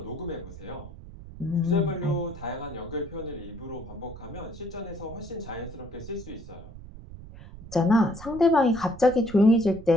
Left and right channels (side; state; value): right; noise; rumble, 15 dB below the sound